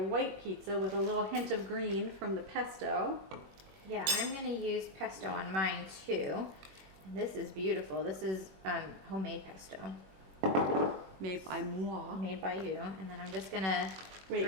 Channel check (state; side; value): late; left; 21 ms